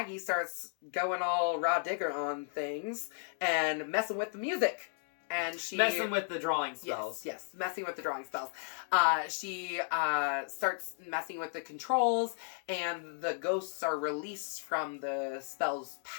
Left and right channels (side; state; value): right; silent; digital silence